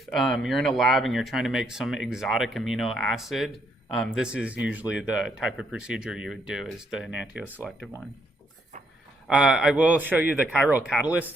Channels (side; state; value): both; normal; correlation 0.73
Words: you're in a lab and you're trying to make some exotic amino acid, this is usually the type of procedure you would do, is the Enantio Selective one. I will show you the chiral catalyst